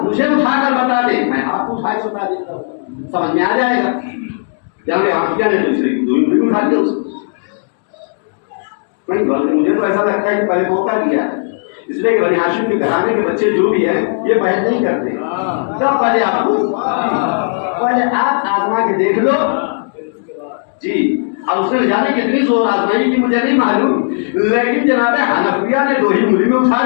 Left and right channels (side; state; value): right; silent; digital silence